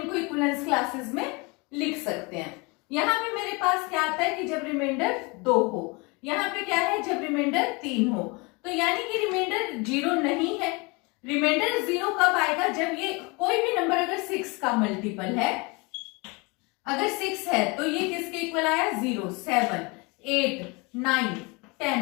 इक्विवेलेंस क्लासेस में लिख सकते हैं. यहाँ पे मेरे पास क्या आता है कि जब रिमाइंडर 2 हो, यहाँ पे क्या है जब रिमाइंडर 3 हो, तो यानी कि रिमाइंडर 0 नहीं है. रिमाइंडर 0 कब आएगा? जब ये कोई भी नंबर अगर 6 का मल्टीपल है, अगर 6 है तो ये किसके इक्वल आया? 0 7 8 9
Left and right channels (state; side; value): quieter; right; 28.1 dB